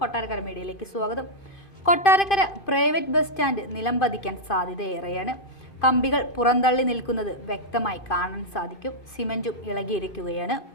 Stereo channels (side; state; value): right; late; 2.5 ms